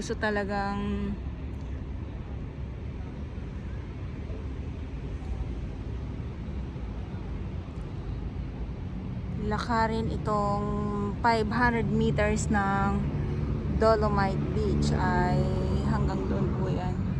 talagang lakarin itong 500 meters ng Dolomite Beach ay hanggang doon po yan.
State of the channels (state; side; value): identical; both; correlation 1.00